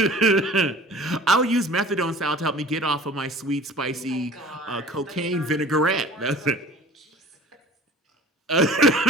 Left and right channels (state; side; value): normal; both; correlation 0.45